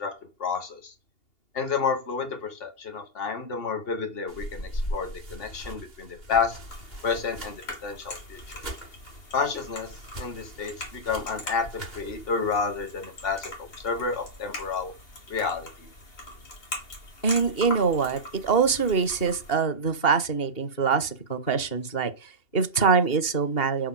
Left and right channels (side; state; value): right; late; 2.8 ms